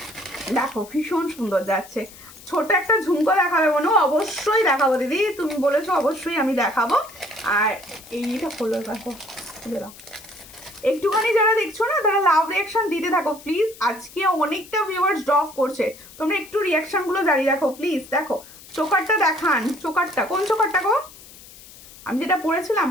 দেখো ভীষণ সুন্দর যাচ্ছে। ছোট একটা ঝুমকো দেখাবে মনে, অবশ্যই দেখাবো দিদি, তুমি বলেছো অবশ্যই আমি দেখাবো। আর এইটা হলো, দেখো খুলে দাও। একটুখানি যারা দেখছো না তারা লাভ রিয়াকশন দিতে থাকো প্লিজ, আজকে অনেকটা ভিউয়ার্স ড্রপ করছে, তোমরা একটু রিয়াকশনগুলো জারি রাখো প্লিজ। দেখো চোকারটা দেখান, চোকারটা কোন চোকারটা গো? আমি যেটা পরেছিলাম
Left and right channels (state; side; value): noise; left; hiss, 20 dB below the sound